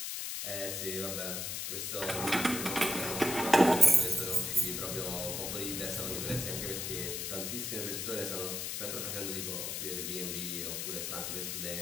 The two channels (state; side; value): noise; left; hiss, 3 dB below the sound